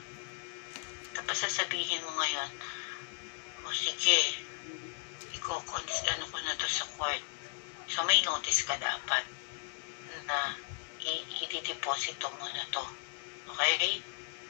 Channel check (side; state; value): right; silent; 54 dB below the other